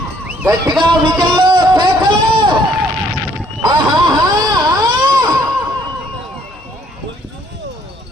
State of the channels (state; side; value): normal; both; correlation 0.64